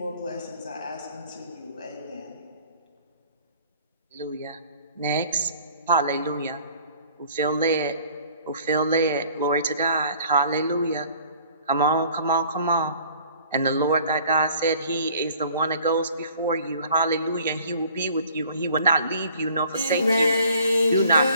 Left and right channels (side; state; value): both; inverted; correlation -0.54